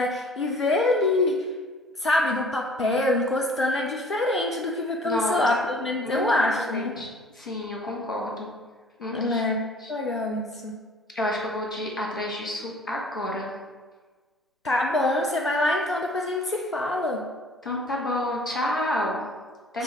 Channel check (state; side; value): normal; both; correlation 0.51